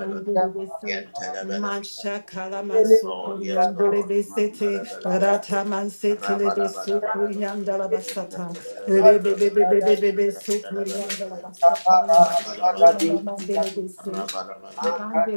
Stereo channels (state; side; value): inverted; both; correlation -1.00